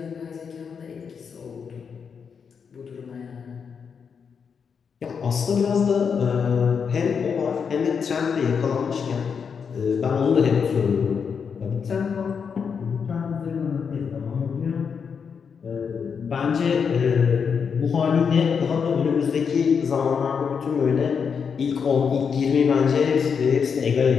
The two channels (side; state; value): right; quieter; 6.4 dB